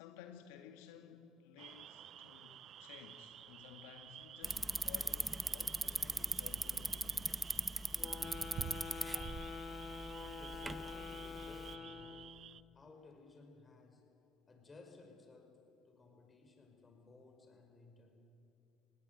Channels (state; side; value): normal; both; correlation 0.90